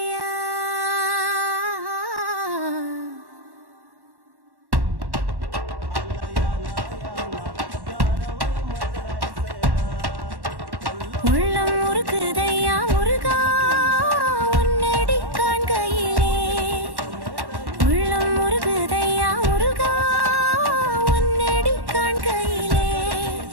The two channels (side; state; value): left; late; 1.1 ms